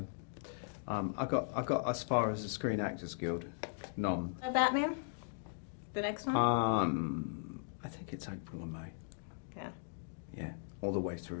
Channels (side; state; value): right; silent; digital silence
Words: I got as far as the Screen Actors Guild nom. A Batman? The next one? I think it's April or May. Yeah. Yeah, all the way